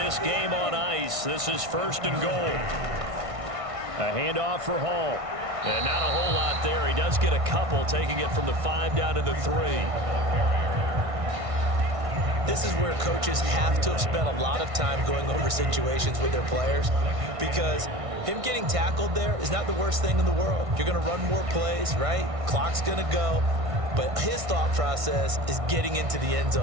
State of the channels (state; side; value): late; left; 1.6 ms